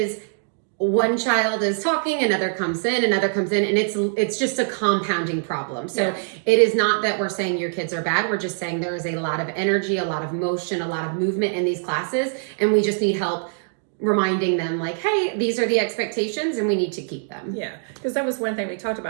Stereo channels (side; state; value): left; silent; digital silence